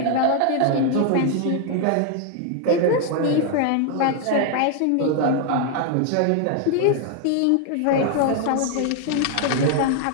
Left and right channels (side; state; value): both; different; correlation 0.00